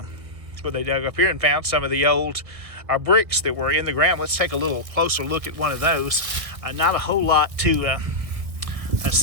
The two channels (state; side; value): late; left; 1.2 ms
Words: where they dug up here and found some of the old bricks that were in the ground. Let's take a little closer look at one of those. Not a whole lot to